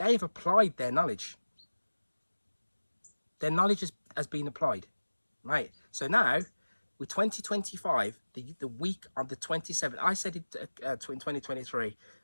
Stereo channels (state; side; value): inverted; both; correlation -1.00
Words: have applied their knowledge. Their knowledge has been applied, right? So now, with 2025, the week of the 27th, I said it in 2023,